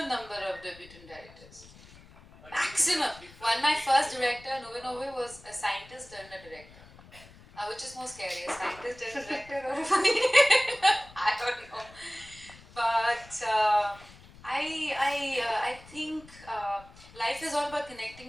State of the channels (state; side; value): noise; left; rumble, 22 dB below the sound